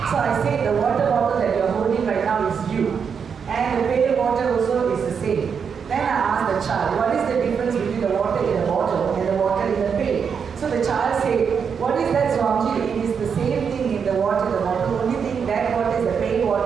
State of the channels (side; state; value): left; quieter; 6.6 dB